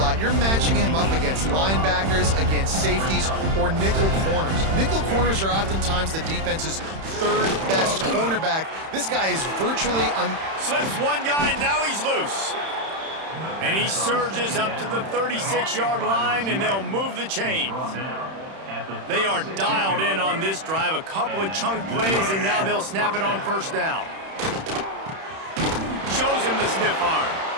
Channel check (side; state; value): left; late; 31 ms